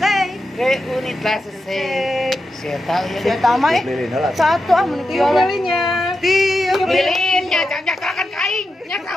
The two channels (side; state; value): both; normal; correlation 0.89